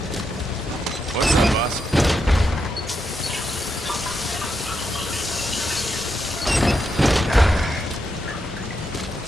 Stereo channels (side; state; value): both; normal; correlation 0.83